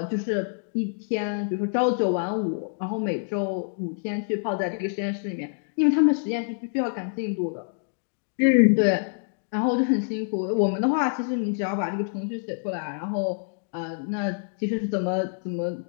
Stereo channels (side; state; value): right; silent; digital silence